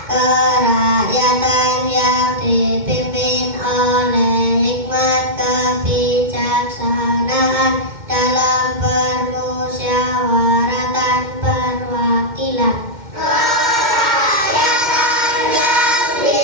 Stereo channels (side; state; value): left; late; 2.1 ms